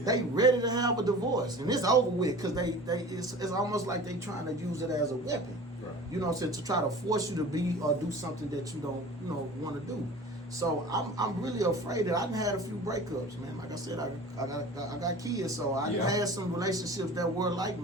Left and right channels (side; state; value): both; normal; correlation 0.40